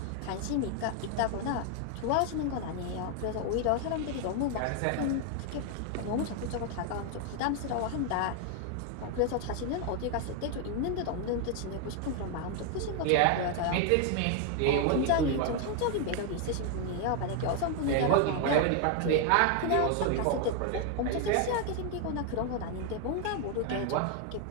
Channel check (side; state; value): both; different; correlation 0.00